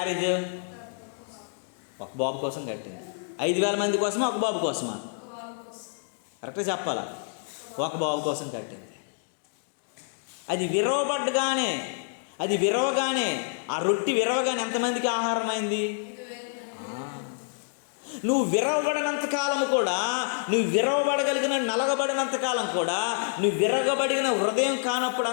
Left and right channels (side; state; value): right; silent; digital silence